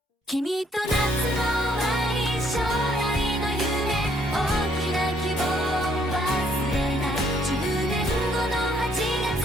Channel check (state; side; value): normal; both; correlation 0.67